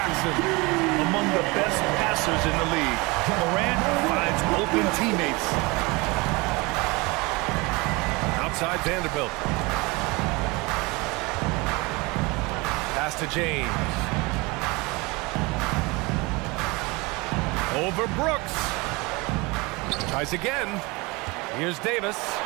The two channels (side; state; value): left; quieter; 25.2 dB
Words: Among the best passers in the league, Morant finds open teammates. Outside Vanderbilt. Pass to James. Over Brooks. Tries again. Here's Davis.